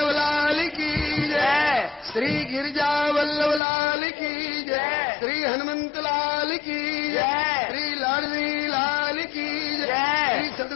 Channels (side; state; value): right; drops out; at 3.6 s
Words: लाल की जय, श्री गिरिजा वल्लभ लाल की जय, श्री हनुमंत लाल की जय, श्री लाडली लाल की जय, श्री